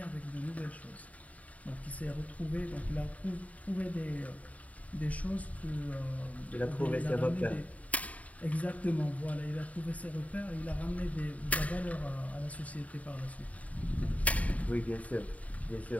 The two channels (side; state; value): right; late; 0.069 ms